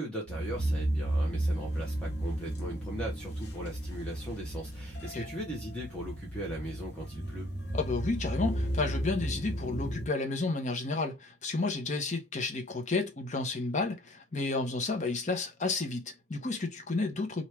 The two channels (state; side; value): normal; both; correlation 0.61